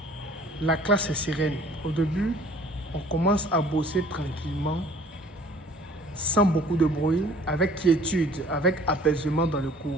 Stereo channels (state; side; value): normal; both; correlation 0.52